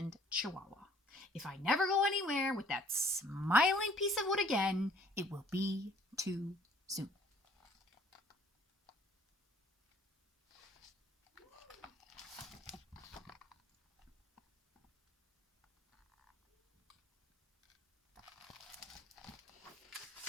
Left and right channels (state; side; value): normal; both; correlation 0.57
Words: Chihuahua. If I never go anywhere with that smiling piece of wood again, it will be too soon.